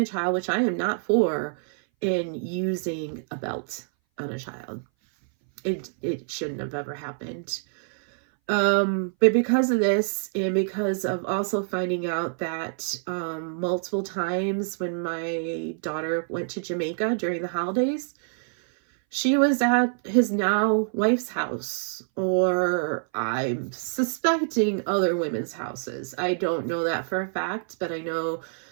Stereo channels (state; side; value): silent; left; 59 dB below the other